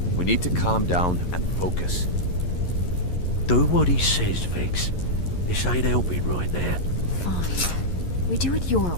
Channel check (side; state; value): right; late; 11 ms